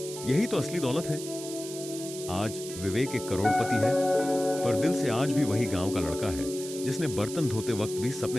यही तो असली दौलत है। आज विवेक एक करोड़पति है, पर दिल से आज भी वही गांव का लड़का है जिसने बर्तन धोते वक्त भी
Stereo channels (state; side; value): noise; right; hiss, 11 dB below the sound